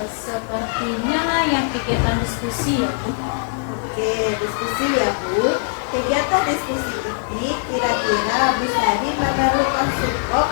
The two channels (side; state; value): right; silent; 58 dB below the other